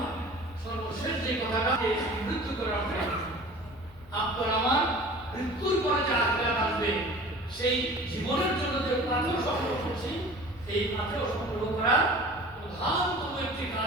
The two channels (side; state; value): left; noise; rumble, 23 dB below the sound